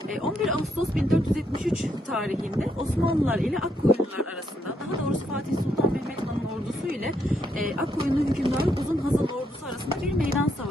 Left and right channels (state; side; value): normal; both; correlation 0.76